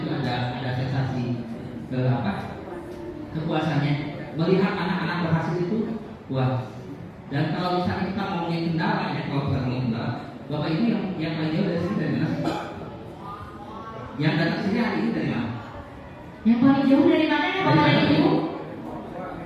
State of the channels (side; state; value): both; identical; correlation 1.00